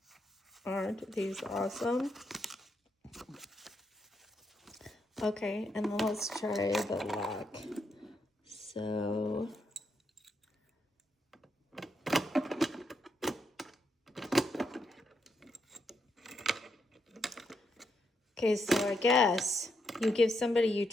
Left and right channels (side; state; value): both; normal; correlation 0.80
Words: aren't these awesome? Okay, and then let's try the lock. So, okay, so I guess you give somebody you